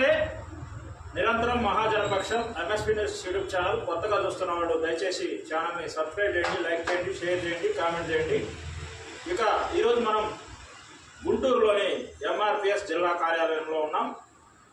నిరంతరం మహాజనపక్షం MSP news YouTube channel కొత్తగా చూస్తున్న వాళ్ళు దయచేసి ఛానల్ని సబ్స్క్రైబ్ చేయండి, లైక్ చేయండి, షేర్ చేయండి, కామెంట్ చేయండి. ఇక ఈరోజు మనం గుంటూరులోని ఎంఆర్పిఎస్ జిల్లా కార్యాలయంలో ఉన్నాం.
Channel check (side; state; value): both; identical; correlation 1.00